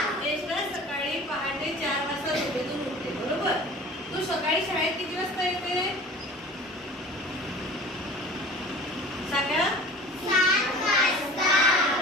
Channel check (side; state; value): both; normal; correlation 0.43